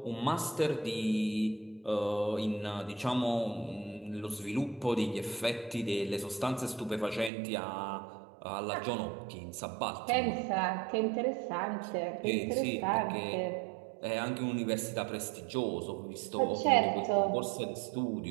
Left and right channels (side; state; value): left; drops out; at 7.3 s